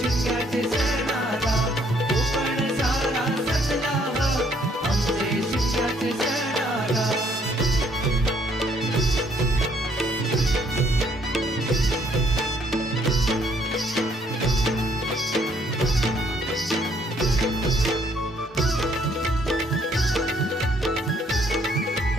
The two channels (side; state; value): both; normal; correlation 0.66